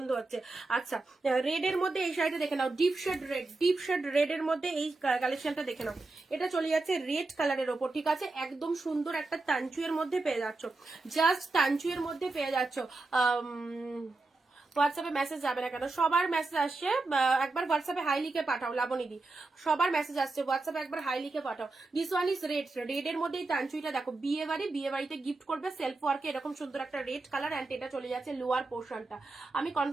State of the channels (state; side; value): quieter; left; 3.4 dB